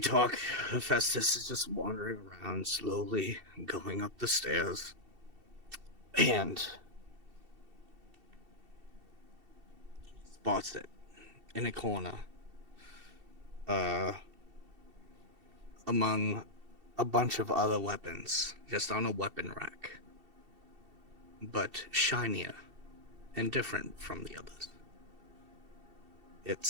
Hephaestus is just wandering around slowly, going up the stairs. And spots it in a corner. Among a bunch of other weapons, just on a weapon rack. But shinier and different from the others.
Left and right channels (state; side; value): late; left; 2.7 ms